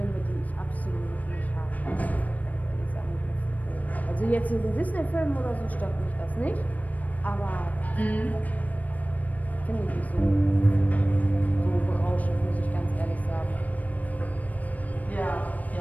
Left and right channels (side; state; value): right; late; 0.073 ms